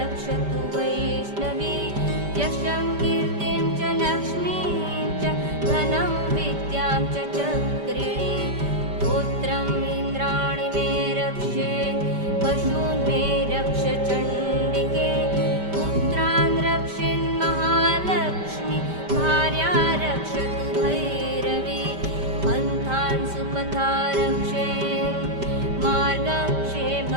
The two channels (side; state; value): left; late; 5.1 ms